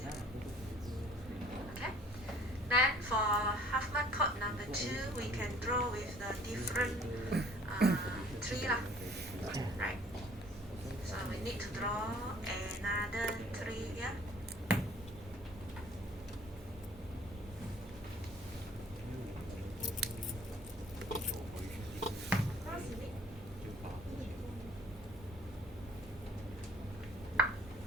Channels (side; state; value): both; normal; correlation 0.54